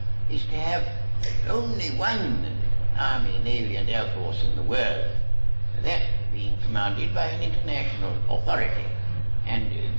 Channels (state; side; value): inverted; both; correlation -1.00